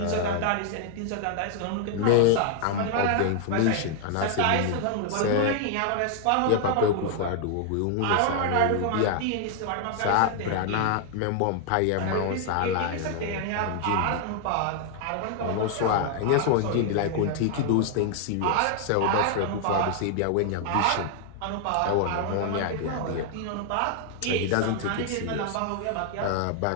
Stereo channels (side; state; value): both; different; correlation 0.00